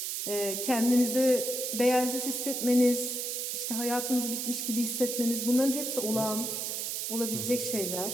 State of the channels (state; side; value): noise; right; hiss, 2 dB below the sound